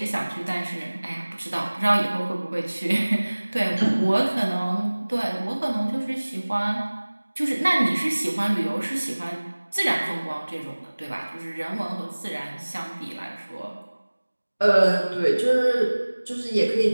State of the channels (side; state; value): both; inverted; correlation -1.00